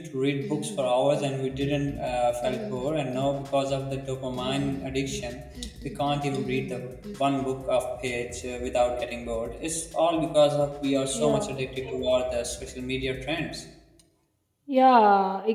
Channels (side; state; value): both; identical; correlation 1.00